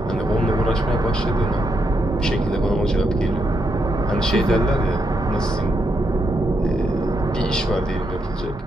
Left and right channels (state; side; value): normal; both; correlation 0.81